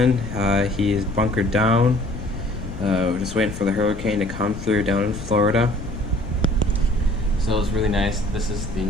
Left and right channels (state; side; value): noise; left; rumble, 11 dB below the sound